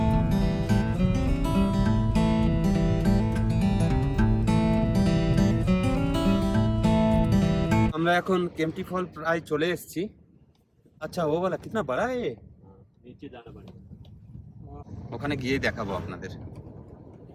আমরা এখন কেম্পটি ফল প্রায় চলে এসেছি। আচ্ছা ও বলা কিতনা বড়া এ, নিচে জানা পড়ে, ওখানে গিয়ে দেখাবো আপনাদের।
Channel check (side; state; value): both; identical; correlation 1.00